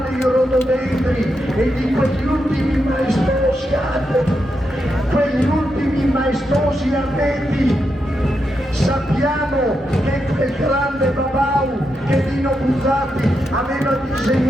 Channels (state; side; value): normal; both; correlation 0.84